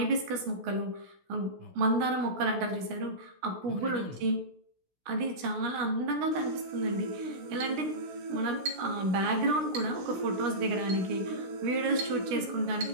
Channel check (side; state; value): left; late; 16 ms